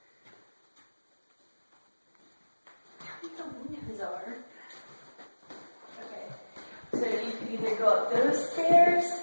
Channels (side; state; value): both; inverted; correlation -1.00